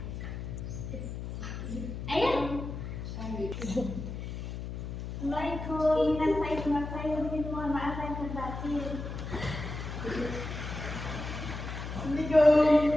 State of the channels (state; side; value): noise; left; hum, 7 dB below the sound